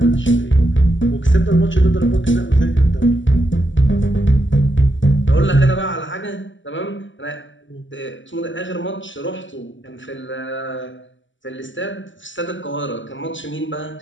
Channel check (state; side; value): late; right; 0.55 ms